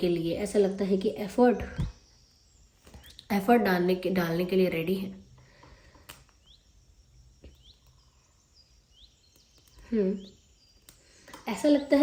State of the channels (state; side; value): identical; both; correlation 1.00